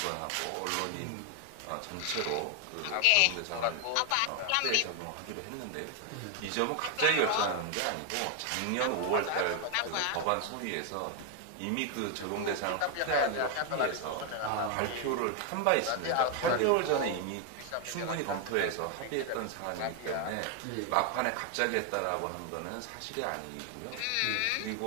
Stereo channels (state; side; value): different; both; correlation 0.01